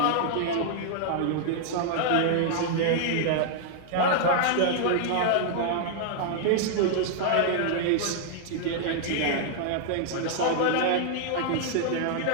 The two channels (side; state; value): both; different; correlation -0.01